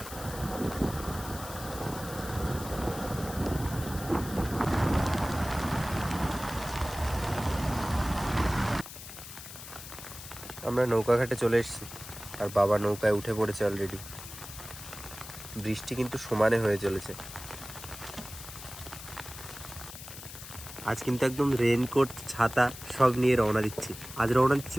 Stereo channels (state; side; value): noise; left; hiss, 13 dB below the sound